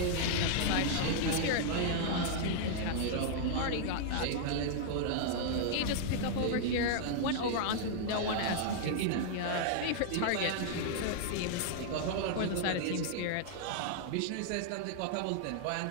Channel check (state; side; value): different; both; correlation -0.01